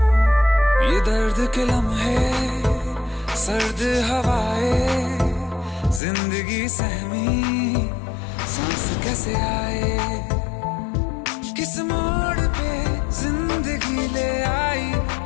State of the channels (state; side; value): drops out; right; at 6.0 s